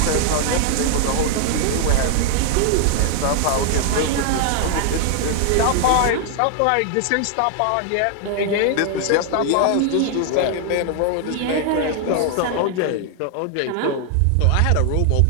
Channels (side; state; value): both; different; correlation 0.00